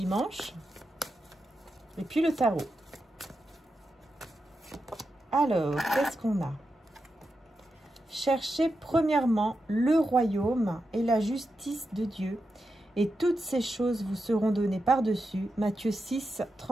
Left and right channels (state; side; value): normal; both; correlation 0.88